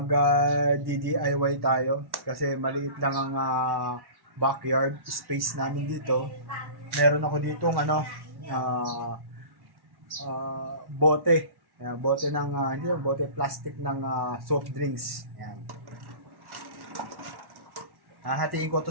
DIY tayo kasi maliit lang ang backyard space namin dito. Meron ako ditong bote. Bote ng bote plastic ng soft drinks. Ayan. Hahatiin ko to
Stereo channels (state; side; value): late; left; 1.1 ms